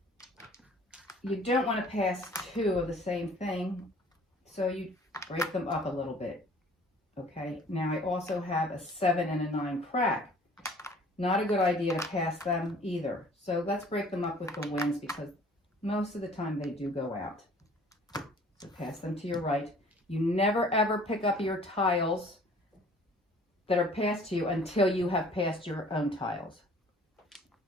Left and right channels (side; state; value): both; normal; correlation 0.52